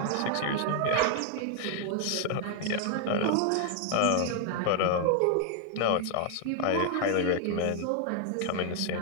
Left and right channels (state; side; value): different; both; correlation 0.00